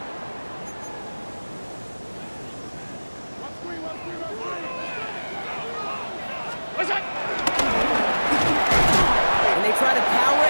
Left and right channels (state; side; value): inverted; both; correlation -1.00